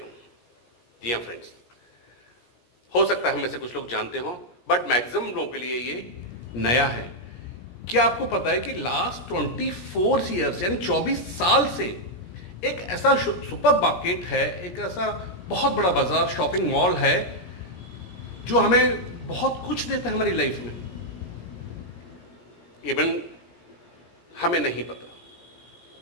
हूं। जी हाँ फ्रेंड्स, हो सकता है हम में से कुछ लोग जानते हो, बट मैक्सिमम लोगों के लिए ये नया है। क्या आपको पता है कि लास्ट 24 ईयर्स यानी 24 साल से एक ऐसा सुपर मार्केट है, एक ऐसा बहुत बड़ा बाजार, शॉपिंग मॉल है जो हमें बहुत कुछ देता है हमारी लाइफ में। इवन हमें नहीं पता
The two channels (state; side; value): late; right; 17 ms